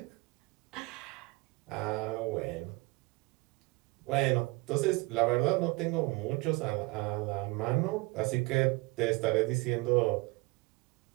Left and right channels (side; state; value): left; quieter; 24.5 dB